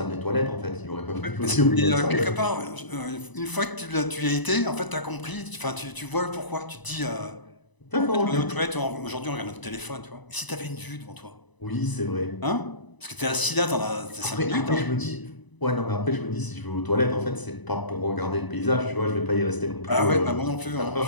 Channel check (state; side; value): late; right; 1.0 ms